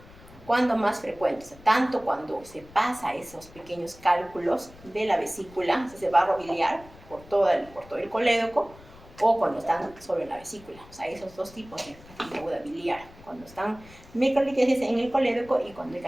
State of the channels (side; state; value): left; noise; rumble, 22 dB below the sound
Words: ¿Cuándo más frecuente? O sea, tanto cuando se pasa esos pequeños cálculos de la vesícula, ese barro biliar, por todo el colédoco, o cuando están solo en la vesícula. O sea, esos dos tipos de pancreatitis aguda biliar, cuando están microlitiasis en el colédoco y cuando hay